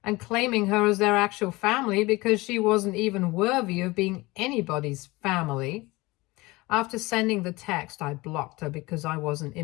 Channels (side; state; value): right; quieter; 22.0 dB